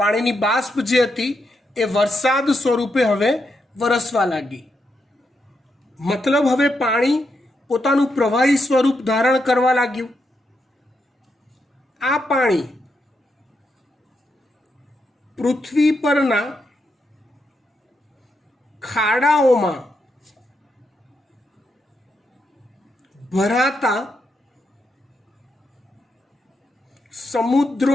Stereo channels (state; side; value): normal; both; correlation 0.82